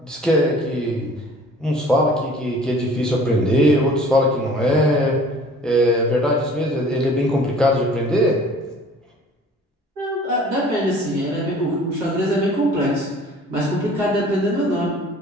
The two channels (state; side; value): normal; both; correlation 0.50